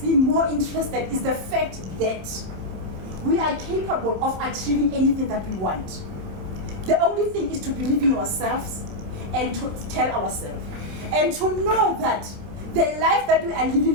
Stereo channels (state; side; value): late; left; 27 ms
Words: me more interested is the fact that we are capable of achieving anything that we want. The only thing is to believe in ourselves and to tell ourselves. And to know that the life that we are